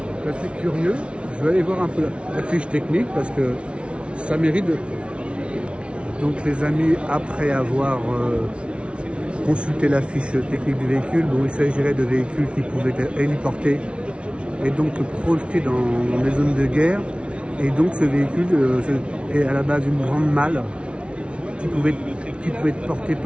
C'est assez curieux. Je vais aller voir un peu la fiche technique parce que ça mérite de... Donc les amis, après avoir consulté la fiche technique du véhicule, bon, il s'agirait de véhicules qui pouvaient être héliportés et donc projetés dans les zones de guerre. Et donc ce véhicule est à la base une grande malle qui pouvait être portée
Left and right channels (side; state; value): left; late; 0.059 ms